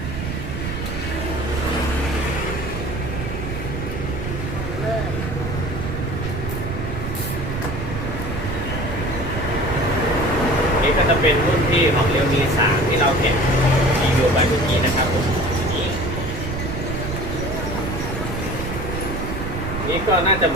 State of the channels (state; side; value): noise; right; rumble, 5 dB below the sound